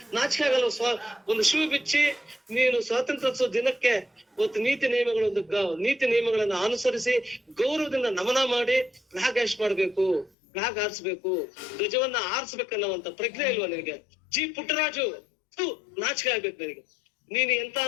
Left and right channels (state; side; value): drops out; right; at 10.3 s